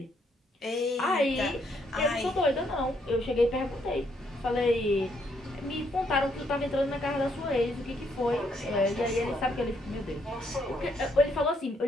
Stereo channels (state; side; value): normal; both; correlation 0.73